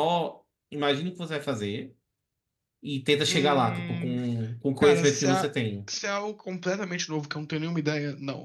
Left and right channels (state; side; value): identical; both; correlation 1.00